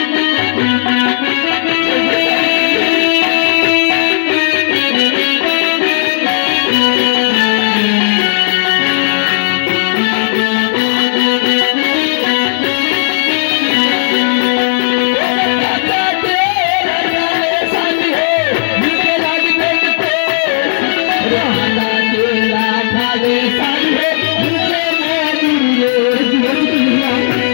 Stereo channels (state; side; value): silent; right; digital silence